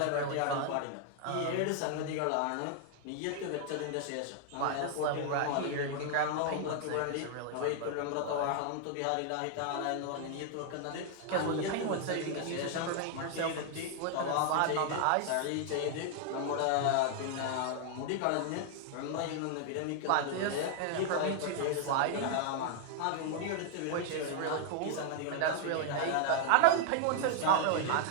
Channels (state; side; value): different; both; correlation 0.00